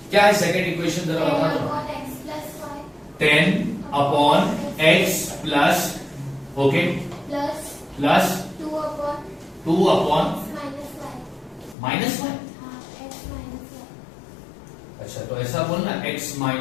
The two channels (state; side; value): drops out; right; at 11.8 s